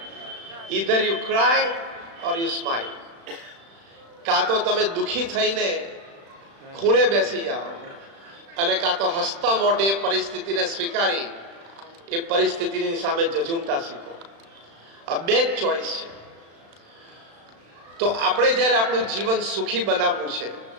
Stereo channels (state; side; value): late; left; 35 ms